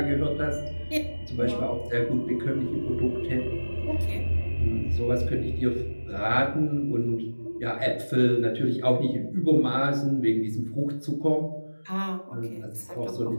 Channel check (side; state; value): both; inverted; correlation -1.00